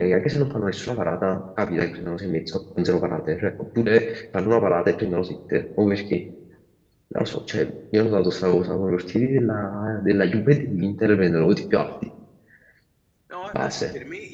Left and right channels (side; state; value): both; identical; correlation 1.00